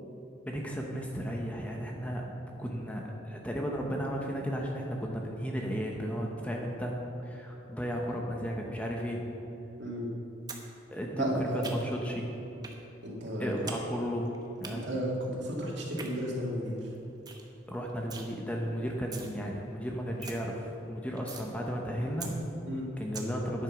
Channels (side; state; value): both; normal; correlation 0.69